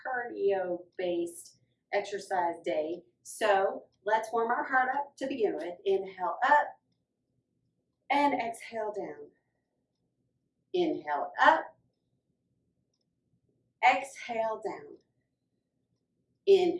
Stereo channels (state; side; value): identical; both; correlation 1.00